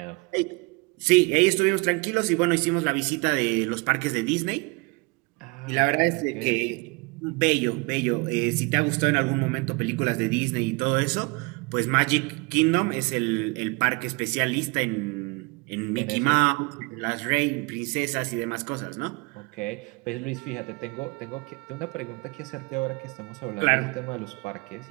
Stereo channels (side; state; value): left; quieter; 28.3 dB